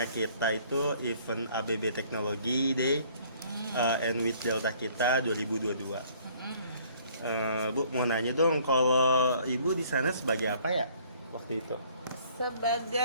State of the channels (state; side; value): inverted; both; correlation -0.58